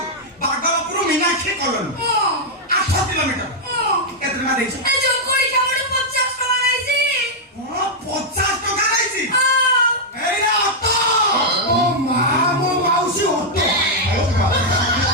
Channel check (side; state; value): both; normal; correlation -0.04